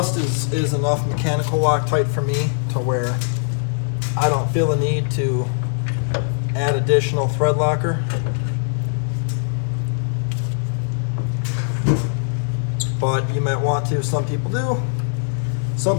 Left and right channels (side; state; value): right; silent; digital silence